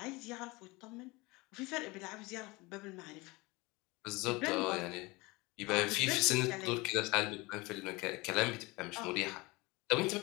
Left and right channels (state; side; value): quieter; right; 23.8 dB